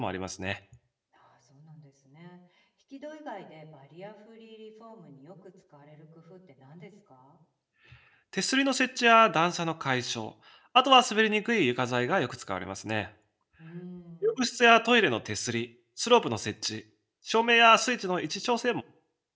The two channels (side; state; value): both; identical; correlation 1.00